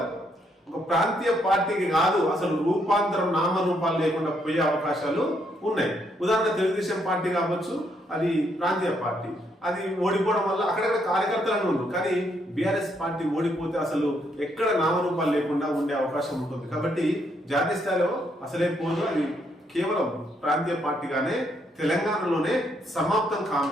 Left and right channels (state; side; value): normal; both; correlation 0.74